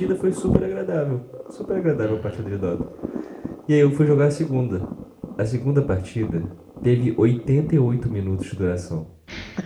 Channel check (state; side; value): identical; both; correlation 1.00